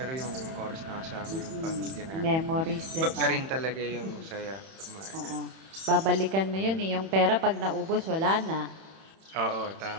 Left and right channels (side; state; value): left; late; 31 ms